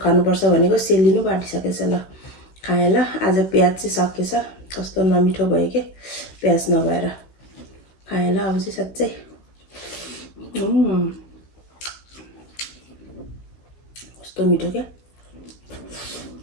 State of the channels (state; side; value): late; right; 16 ms